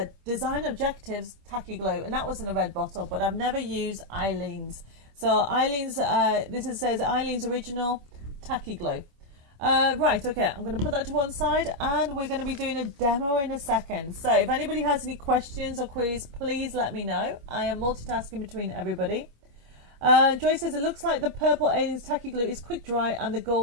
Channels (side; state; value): left; late; 25 ms